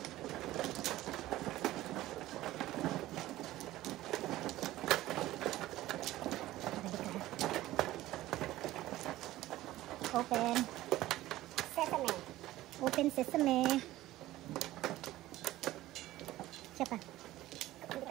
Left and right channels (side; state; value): left; quieter; 15.9 dB